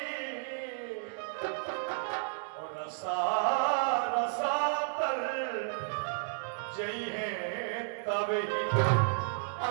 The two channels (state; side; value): silent; left; digital silence